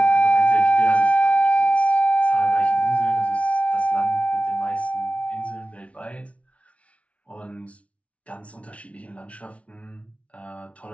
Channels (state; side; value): late; right; 0.064 ms